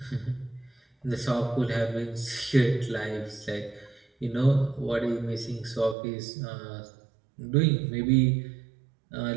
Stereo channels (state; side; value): drops out; left; at 6.0 s